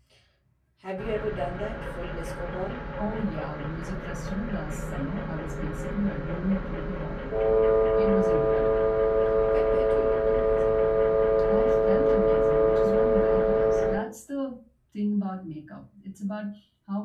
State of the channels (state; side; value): identical; both; correlation 1.00